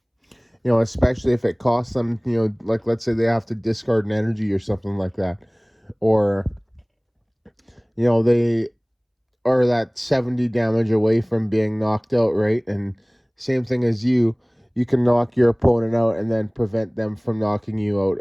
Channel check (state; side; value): identical; both; correlation 1.00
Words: Especially if it costs them, like let's say they have to discard an energy or something like that. Or, they are that 70 damage away from being knocked out, right? And same thing as you can knock your opponent out and then prevent them from knocking you out